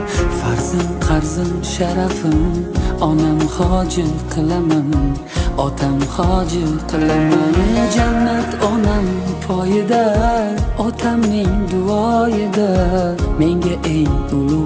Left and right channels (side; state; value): both; identical; correlation 1.00